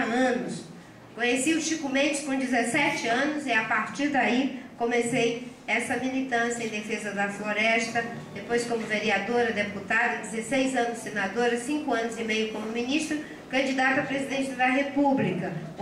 Conheci o Chico Mendes com 17 anos e a partir daí comecei essa militância em defesa da floresta, depois como vereadora, deputada, 16 anos senadora, 5 anos e meio como ministra, candidata a presidente da República.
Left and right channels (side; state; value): both; identical; correlation 1.00